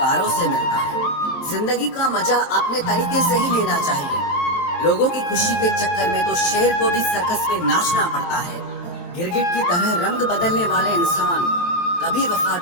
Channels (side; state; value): right; late; 23 ms